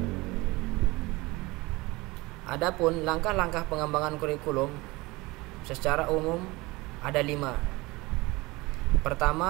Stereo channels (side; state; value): left; quieter; 21.5 dB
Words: Adapun langkah-langkah pengembangan kurikulum secara umum ada 5.